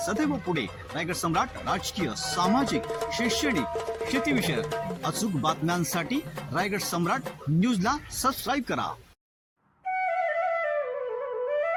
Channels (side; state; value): both; identical; correlation 1.00